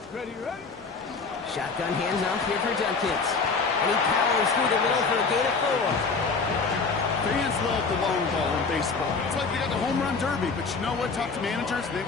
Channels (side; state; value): right; quieter; 4.5 dB